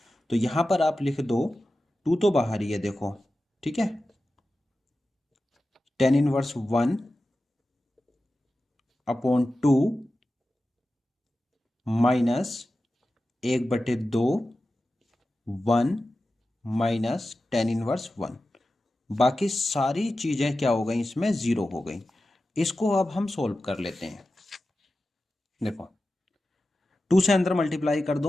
तो यहां पर आप लिख दो 2 तो बाहर ही है देखो, ठीक है, tan inverse 1 upon 2 minus 1/2, 1 minus tan inverse 1। बाकी सारी चीजें क्या हो गई, इसमें 0 हो गई। इसको अब हम सोल्व कर लेते हैं। देखो 2 से अंदर मल्टीप्लाई कर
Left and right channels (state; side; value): normal; both; correlation 0.93